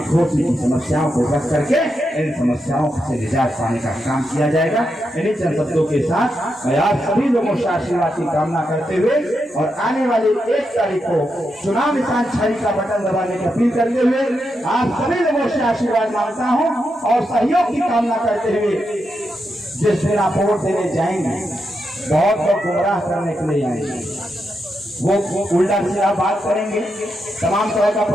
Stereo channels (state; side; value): normal; both; correlation 0.85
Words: की समस्याओं को रख करके इन समस्याओं से निजात पाने का काम किया जाएगा। इन्हीं चंद शब्दों के साथ मैं आप सभी लोगों से आशीर्वाद की कामना करते हुए और आने वाली 1 तारीख को चुनाव निशान छड़ी का बटन दबाने की अपील करते हुए आप सभी लोगों से आशीर्वाद मांगता हूं और सहयोग की कामना करते हुए जिस दिन आप वोट देने जाएंगे बहुत लोग गुमराह करने के लिए आएंगे, वो उल्टा सीधा बात करेंगे, तमाम तरह का